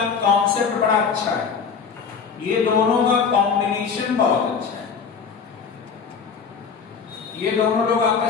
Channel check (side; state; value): right; quieter; 6.1 dB